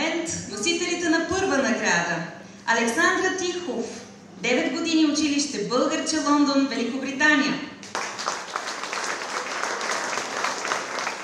носителите на първа награда. Александра Тихов, 9 години училище Българче, Лондон, Великобритания.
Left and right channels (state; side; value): identical; both; correlation 1.00